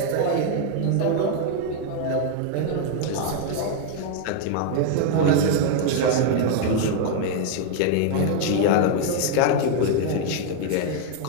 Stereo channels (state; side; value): different; both; correlation 0.00